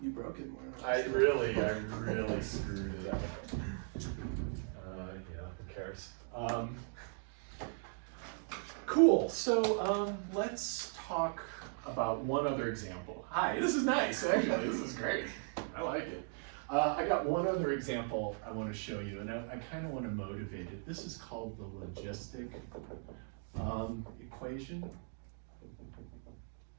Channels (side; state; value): left; silent; 52 dB below the other